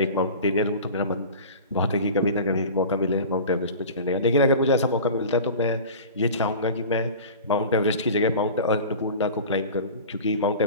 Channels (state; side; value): inverted; both; correlation -0.37